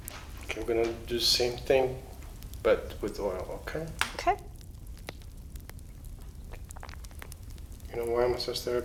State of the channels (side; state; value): both; identical; correlation 1.00